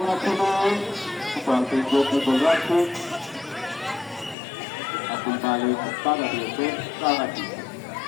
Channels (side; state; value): right; drops out; at 4.4 s